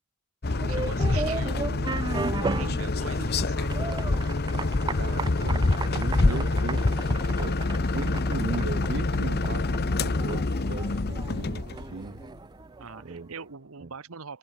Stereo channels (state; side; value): normal; both; correlation 0.70